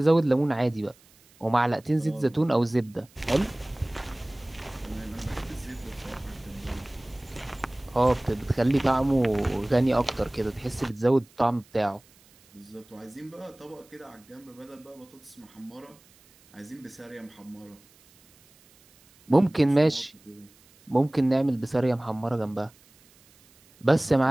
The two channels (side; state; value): right; noise; hiss, 29 dB below the sound